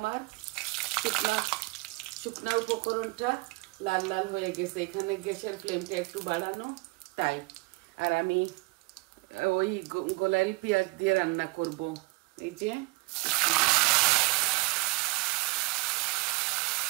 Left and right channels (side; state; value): left; quieter; 24.6 dB